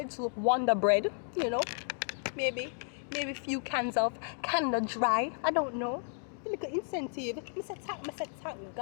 Wonder Bread, you know. Maybe a few cans of Canada Dry. I don't know. The little incentive. I said thank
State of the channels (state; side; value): silent; right; 56 dB below the other